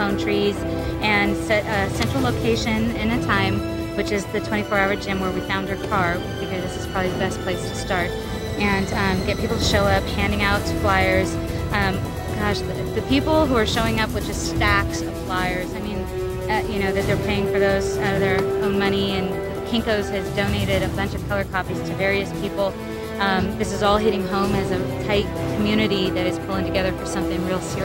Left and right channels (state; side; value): identical; both; correlation 1.00